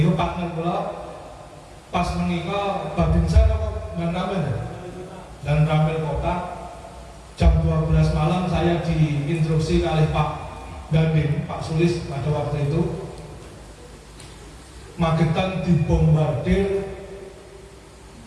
partner kula pas menika Babinsa dan Ramil Kota jam 12 malam saya diinstruksi oleh Pak Dandim, Pak Sulis pada waktu itu Magetan dibombardir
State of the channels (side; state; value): both; identical; correlation 1.00